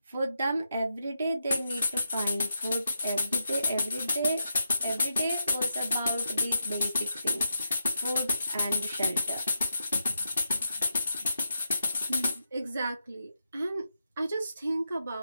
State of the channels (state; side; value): inverted; both; correlation -0.85